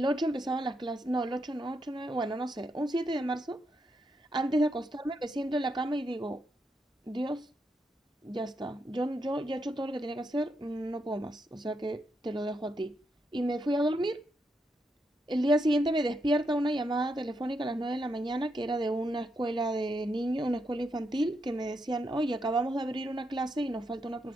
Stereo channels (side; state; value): both; normal; correlation 0.81